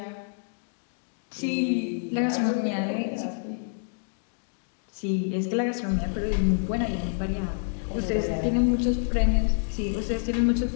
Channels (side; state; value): right; silent; digital silence